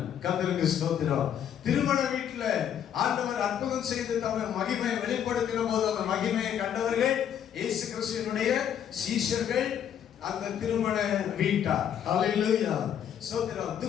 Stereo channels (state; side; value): quieter; right; 9.3 dB